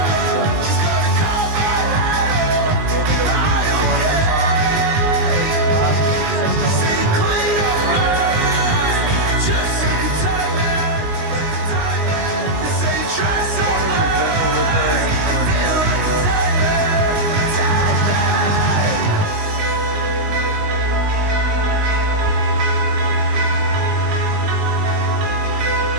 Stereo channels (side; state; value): left; late; 19 ms